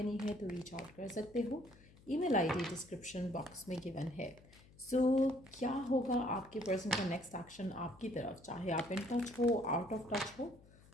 है तो रीच आउट कर सकते हो। ईमेल आईडी डिस्क्रिप्शन बॉक्स में गिवन है। सो क्या होगा आपके पर्सन का नेक्स्ट एक्शन आपकी तरफ, चाहे आप इन टच हो आउट ऑफ टच हो,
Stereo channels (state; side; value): noise; left; hum, 24 dB below the sound